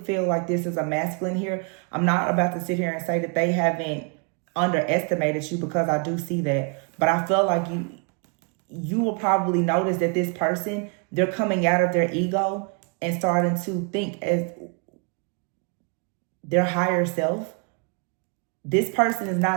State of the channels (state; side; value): quieter; left; 36.8 dB